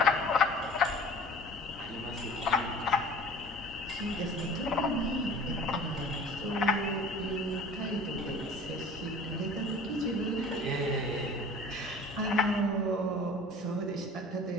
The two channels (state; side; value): normal; both; correlation 0.45